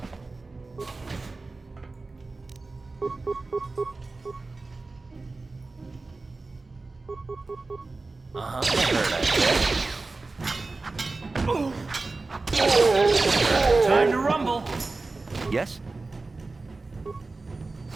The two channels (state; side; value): quieter; left; 3.5 dB